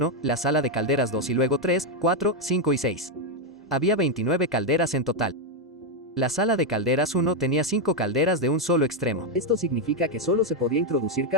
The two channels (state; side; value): normal; both; correlation 0.02